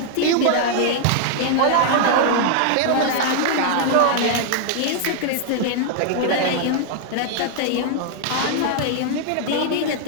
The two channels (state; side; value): different; both; correlation 0.00